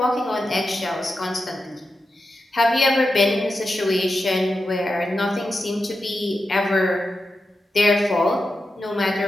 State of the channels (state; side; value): normal; both; correlation 0.89